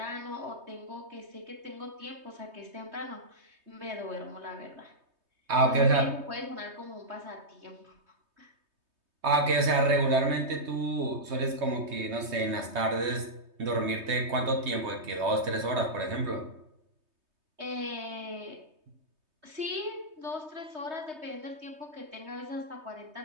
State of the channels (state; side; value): late; left; 3.2 ms